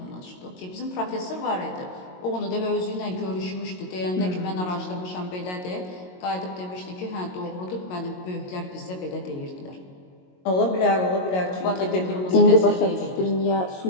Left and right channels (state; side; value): late; right; 22 ms